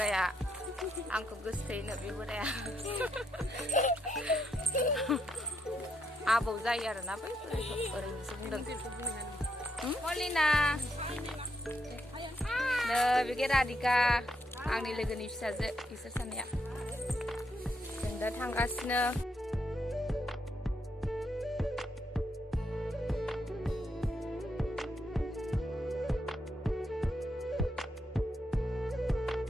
आंखौ गोसोथोयोनो बे बोराया आबौ जायो आरोना बै बोरायखौ ओरैनोसो बुंदों। मलिना नै बेगे राधिका आंनि लोगोनि फिसाजो बिसोर सानैया। जों दा थांगासिनो।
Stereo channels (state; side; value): normal; both; correlation 0.78